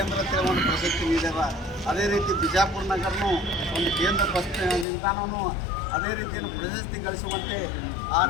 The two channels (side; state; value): right; drops out; at 4.9 s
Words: ಅಂತೇಳಿ ಒಂದು ಪ್ರಶಸ್ತಿ ನೀಡ್ಯಾರ, ಅದೇ ರೀತಿ ಬಿಜಾಪುರ ನಗರನೂ ಒಂದು ಕೇಂದ್ರ ಬಸ್ ನಿಲ್ದಾಣವೂ ಅದೇ ರೀತಿಯನ್ನು ಪ್ರಶಸ್ತಿ ಗಳಿಸುವಂತೆ ಆ